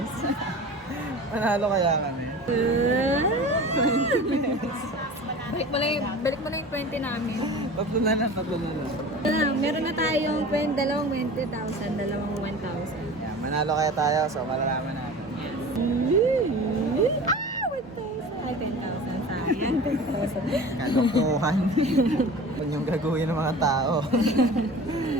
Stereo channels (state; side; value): normal; both; correlation 0.37